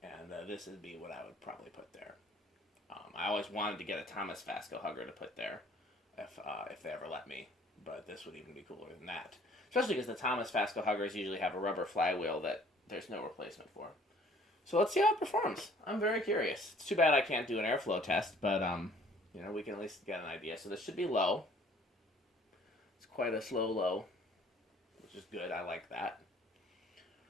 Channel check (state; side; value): normal; both; correlation 0.56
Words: And this would be what I would probably put there. I always wanted to get a Thomas Vasco Hugger to put there if they ever let me. But this would even be cooler than that. Especially because the Thomas Vasco Huggers usually have a rubber flywheel that there's no replacement for. So let's see how it performs. I'm very curious. It's too bad I can't do an airflow test, but we can at least get an idea. So this should be low. It's quite a slow low, which is good. I like that.